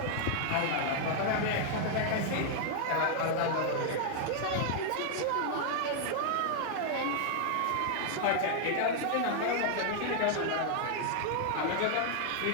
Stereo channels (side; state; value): both; different; correlation 0.00